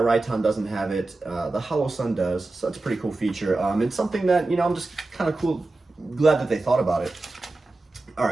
doesn't have it. The Holosun does, so that's a pretty cool feature. It's something that, you know, I'm just kind of glad that they thought about it. All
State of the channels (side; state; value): left; quieter; 3.2 dB